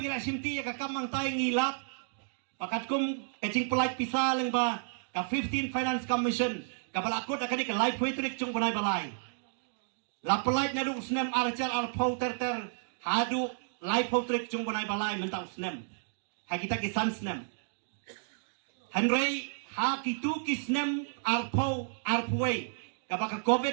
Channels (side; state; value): left; silent; digital silence